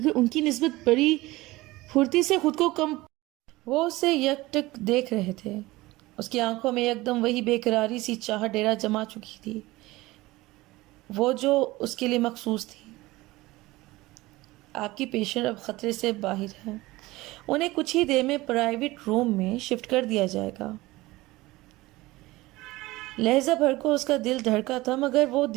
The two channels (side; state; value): left; quieter; 19.6 dB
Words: ان کی نسبت بڑی پھرتی سے خود کو کم وہ اسے یک ٹک دیکھ رہے تھے. اس کی آنکھوں میں یکدم وہی بے قراری سی چاہ ڈیرا جما چکی تھی، وہ جو اس کے لیے مخصوص تھی. آپ کی پیشنٹ اب خطرے سے باہر ہے، انہیں کچھ ہی دیر میں پرائیویٹ روم میں شفٹ کر دیا جائے گا. لہجہ بھر کو اس کا دل دھڑکا تھا مگر وہ